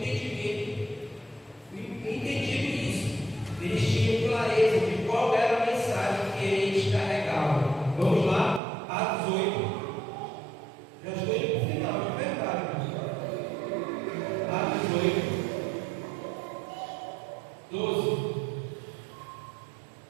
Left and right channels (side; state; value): left; drops out; at 8.6 s